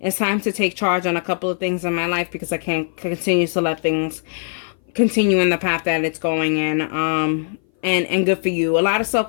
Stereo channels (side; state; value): right; silent; 59 dB below the other